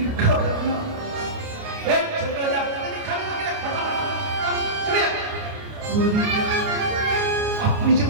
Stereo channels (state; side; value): late; left; 29 ms